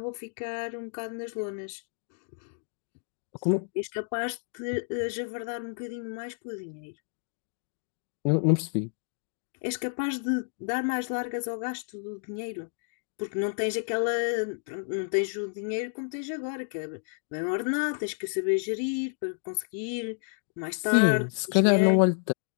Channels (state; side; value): silent; right; digital silence